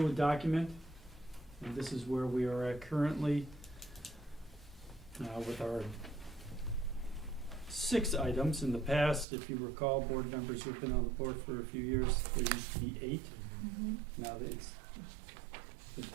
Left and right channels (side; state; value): left; drops out; at 9.2 s